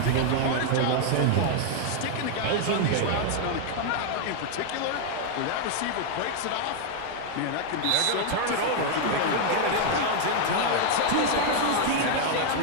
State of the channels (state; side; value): different; both; correlation 0.00